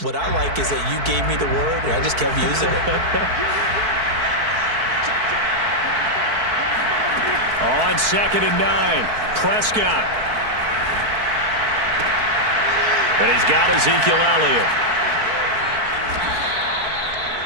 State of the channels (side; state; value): left; late; 4.5 ms